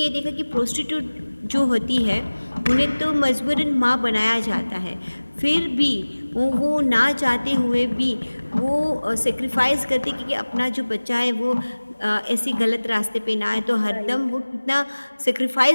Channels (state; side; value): inverted; both; correlation -1.00